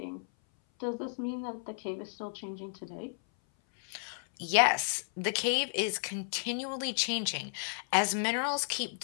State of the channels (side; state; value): right; silent; 56 dB below the other